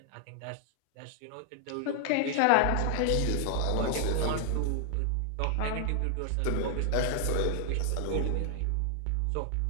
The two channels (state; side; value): different; both; correlation 0.00